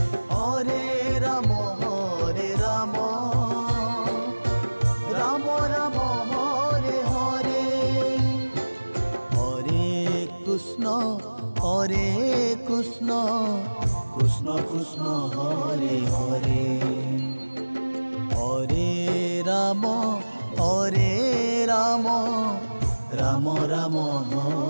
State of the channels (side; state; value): both; inverted; correlation -1.00